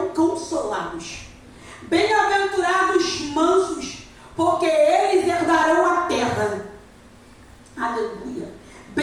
consolados. Bem-aventurados mansos, porque eles herdarão a terra. Aleluia.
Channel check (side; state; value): both; identical; correlation 1.00